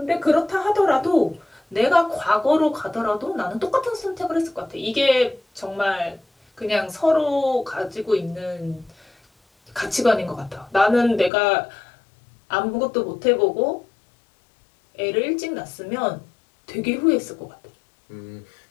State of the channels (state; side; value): drops out; right; at 11.3 s